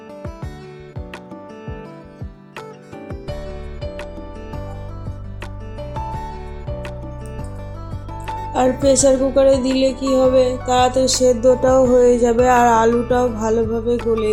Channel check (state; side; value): identical; both; correlation 1.00